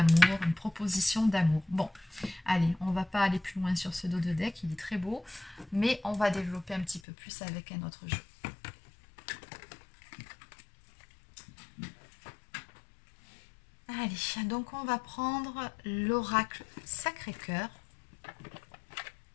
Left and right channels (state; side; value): drops out; right; at 7.0 s